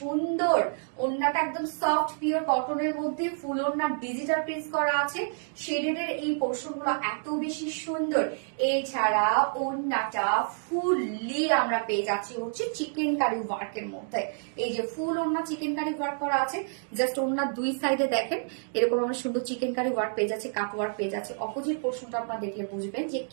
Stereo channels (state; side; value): silent; left; digital silence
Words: ওড়নাটা একদম সফট পিওর কটনের মধ্যে ফুল ওড়না ডিজিটাল প্রিন্ট করা আছে, শেডেড এর এই পোর্শন গুলো এত বেশি সুন্দর। এছাড়া ওড়নাটা ফুললি আমরা পেয়ে যাচ্ছি হচ্ছে চিকেন কারি ওয়ার্কের মধ্যে। এই যে ফুল ওড়না চিকেন কারি ওয়ার্ক করা আছে, জাস্ট ওড়নার দুই সাইডে দেখেন এরকম আমরা সুন্দর চিকেন কারি ওয়ার্ক পেয়ে যাচ্ছে, কাট ওয়ার্ক পেয়ে যাচ্ছে। অপোজিট পোর্শনটা আপনারা দেখলে বুঝবেন যে